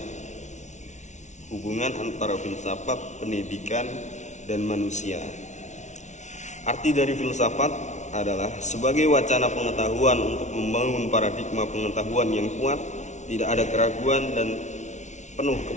Hubungan antara filsafat, pendidikan, dan manusia. Arti dari filsafat adalah sebagai wacana pengetahuan untuk membangun paradigma pengetahuan yang kuat, tidak ada keraguan dan penuh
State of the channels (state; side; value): late; right; 0.34 ms